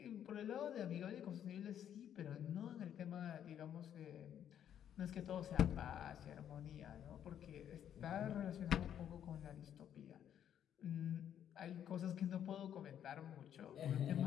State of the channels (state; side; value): quieter; right; 9.8 dB